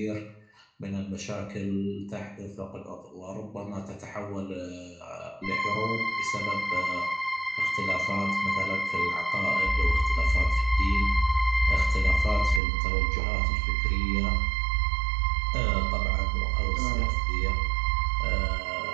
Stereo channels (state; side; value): drops out; left; at 12.6 s